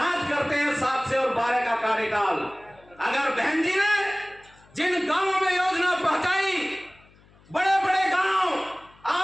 करते हैं 7 से और 12 का कार्यकाल। अगर बहन जी ने जिन गांवों में योजना पहुंचाई, बड़े बड़े गांव,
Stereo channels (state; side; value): noise; left; hum, 28 dB below the sound